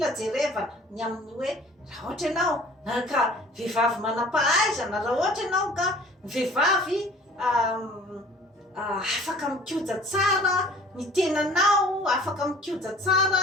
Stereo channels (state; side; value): normal; both; correlation 0.49